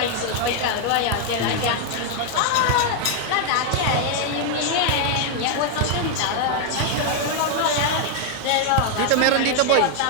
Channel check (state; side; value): different; both; correlation 0.00